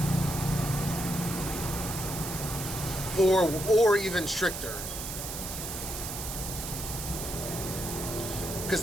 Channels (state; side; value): noise; right; hiss, 6 dB below the sound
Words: Or even stricter. Because